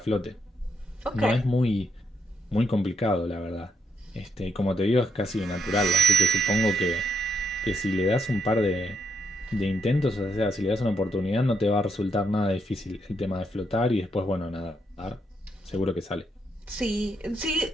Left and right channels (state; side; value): normal; both; correlation 0.78